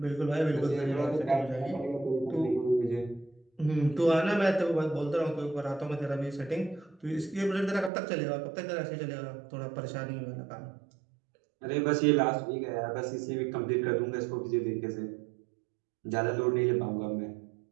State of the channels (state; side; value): drops out; left; at 7.9 s